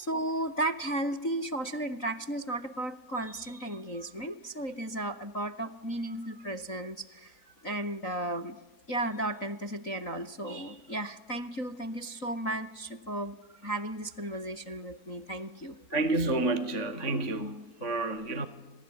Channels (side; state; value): right; late; 3.9 ms